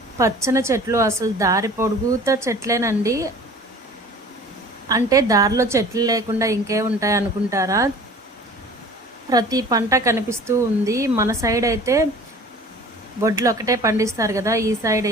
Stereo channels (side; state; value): both; normal; correlation 0.45